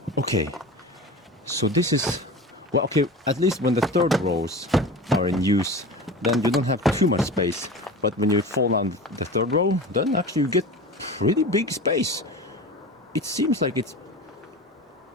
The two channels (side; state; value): both; normal; correlation 0.33